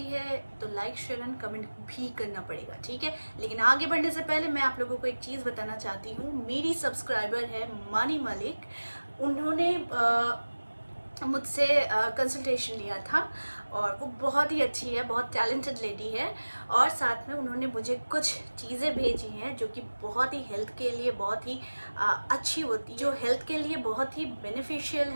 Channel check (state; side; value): inverted; both; correlation -1.00